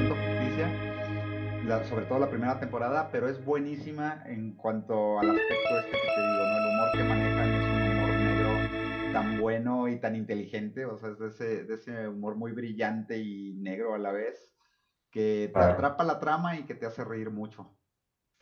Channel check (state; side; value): identical; both; correlation 1.00